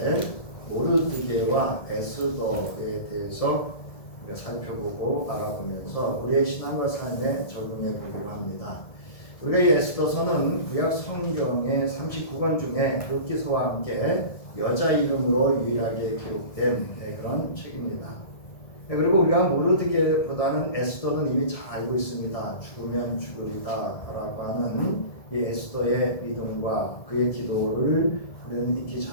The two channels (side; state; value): right; late; 1.7 ms